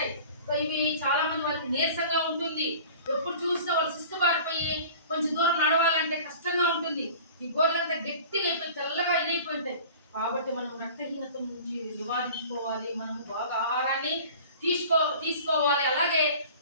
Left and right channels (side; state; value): both; inverted; correlation -0.43